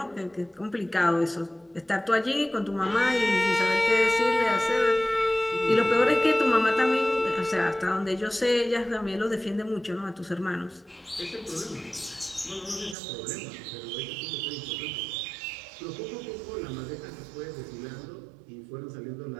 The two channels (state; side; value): drops out; left; at 13.0 s